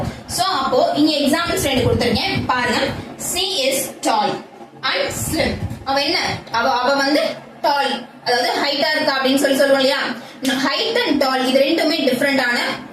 சோ அப்போ இங்க எக்ஸாம்பிள்ஸ் ரெண்டு கொடுத்திருக்கேன் பாருங்க. she is tall and slim. அவ என்ன? அவ வந்து டால், அதாவது ஹைட்டா இருக்கா அப்படின்னு சொல்லுவோம் இல்லையா. ஹைட் அண்ட் டால் இது ரெண்டுமே டிஃபரெண்டான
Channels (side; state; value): both; identical; correlation 1.00